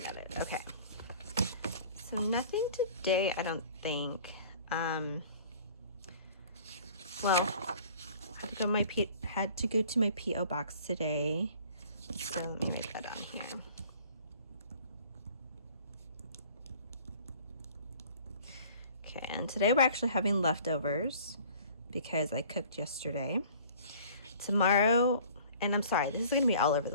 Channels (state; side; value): inverted; both; correlation -0.50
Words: at it. Okay. So nothing today, I don't think. Well, had to go to my P.O. box today. So let me write that on here. Okay, and today we're actually having leftovers because I cooked yesterday. Tomorrow, and I'm sorry, this is going to be all over